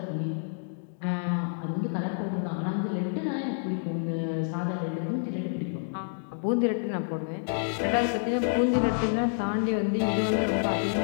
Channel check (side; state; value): right; silent; digital silence